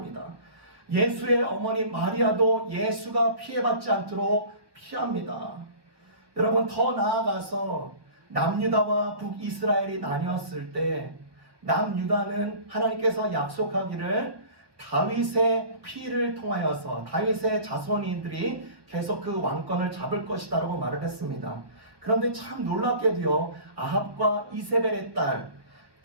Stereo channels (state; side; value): late; left; 1.2 ms